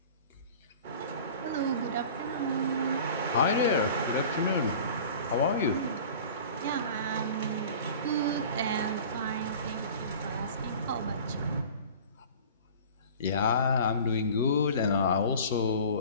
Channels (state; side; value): inverted; both; correlation -0.41